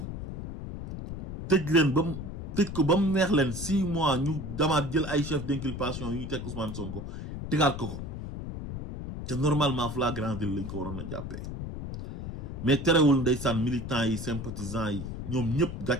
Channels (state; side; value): noise; left; rumble, 7 dB below the sound